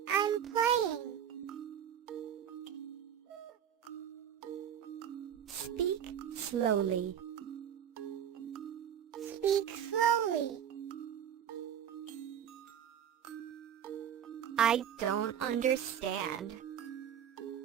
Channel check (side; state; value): left; quieter; 9.2 dB